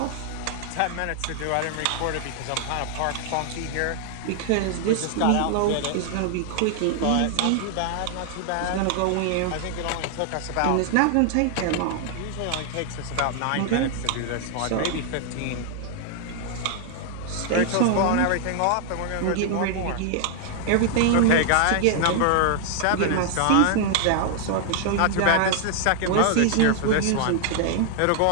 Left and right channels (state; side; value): different; both; correlation 0.00